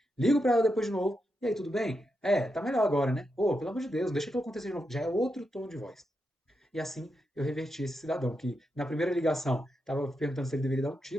Ligo para ela depois de novo, e aí, tudo bem? É, tá melhor agora, né? Pô, pelo amor de Deus, deixa que eu acontecer de novo. Já é outro tom de voz. E assim eu reverti esse cidadão, que na primeira ligação estava perguntando se ele deveria dar um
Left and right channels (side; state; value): both; normal; correlation 0.85